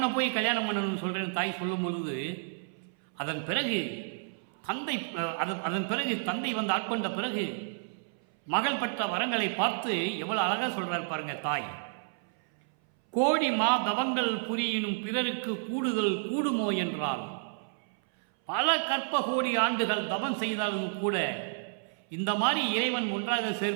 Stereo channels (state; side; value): silent; left; 57 dB below the other